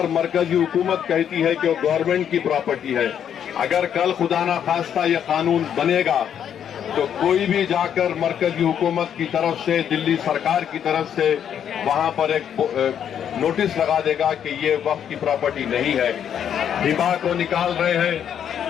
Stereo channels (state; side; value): quieter; right; 9.0 dB